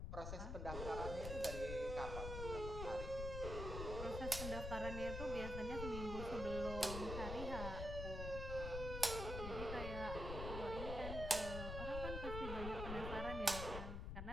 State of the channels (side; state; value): left; noise; rumble, 4 dB below the sound